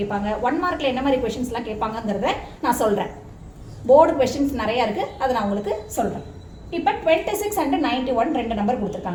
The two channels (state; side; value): identical; both; correlation 1.00